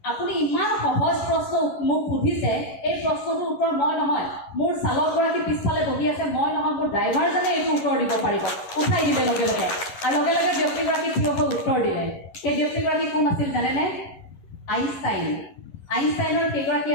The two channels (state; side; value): late; right; 11 ms